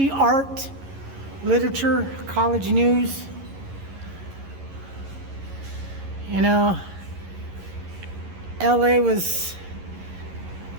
art, literature, college news. You know, LA was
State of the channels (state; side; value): late; left; 11 ms